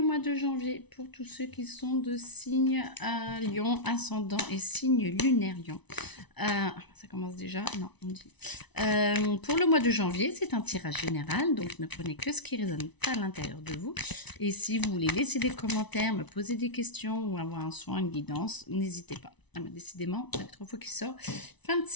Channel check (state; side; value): late; right; 0.99 ms